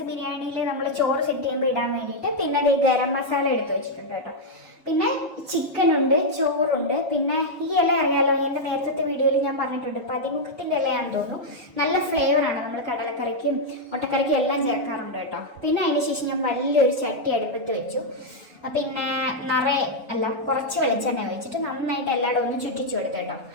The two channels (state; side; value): normal; both; correlation -0.02